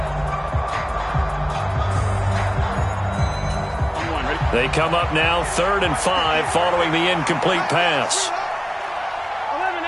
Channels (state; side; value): identical; both; correlation 1.00